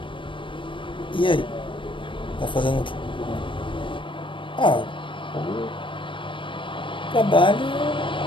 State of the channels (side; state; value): right; late; 0.25 ms